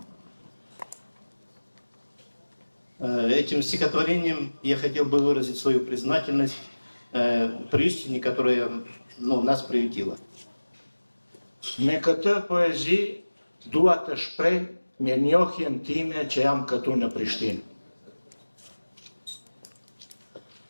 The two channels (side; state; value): both; inverted; correlation -1.00